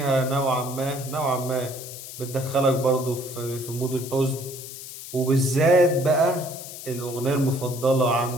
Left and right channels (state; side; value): noise; left; hiss, 12 dB below the sound